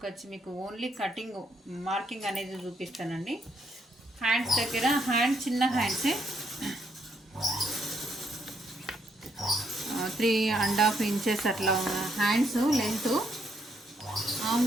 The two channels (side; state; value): both; normal; correlation 0.74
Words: మీకు ఓన్లీ కటింగ్ మార్కింగ్ అనేది చూపిస్తానండి. హ్యాండ్స్ దగ్గర చిన్న హ్యాండ్సే 3.5 ఇంచెస్ అట్లా హ్యాండ్స్ లెంత్. ఆమ్